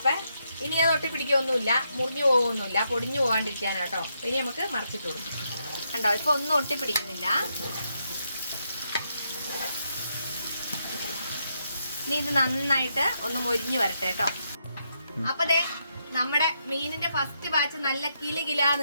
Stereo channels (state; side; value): inverted; both; correlation -0.80